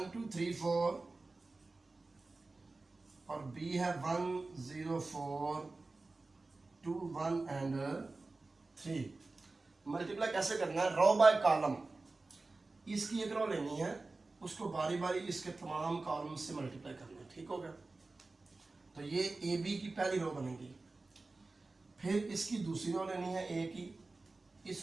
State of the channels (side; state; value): left; quieter; 3.4 dB